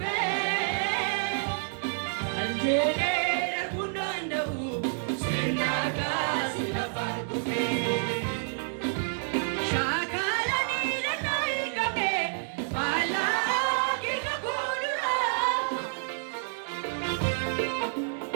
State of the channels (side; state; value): left; silent; digital silence